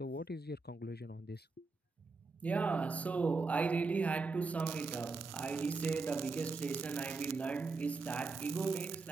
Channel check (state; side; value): quieter; left; 4.1 dB